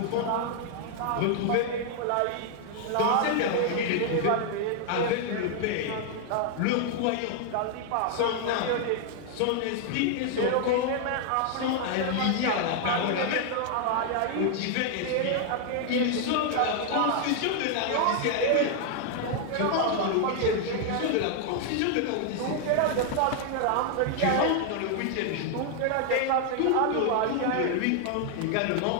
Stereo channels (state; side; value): different; both; correlation 0.00